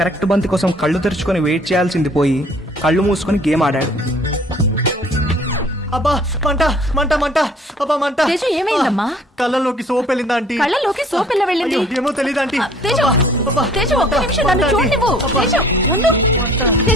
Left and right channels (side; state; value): both; normal; correlation 0.55